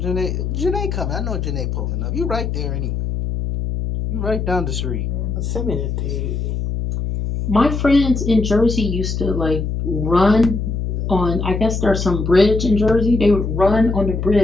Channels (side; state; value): left; noise; hum, 2 dB below the sound